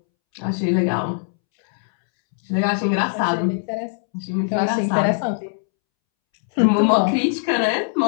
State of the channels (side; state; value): right; silent; 65 dB below the other